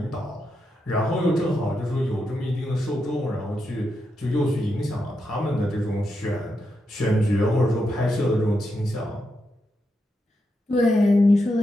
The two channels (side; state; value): both; normal; correlation 0.85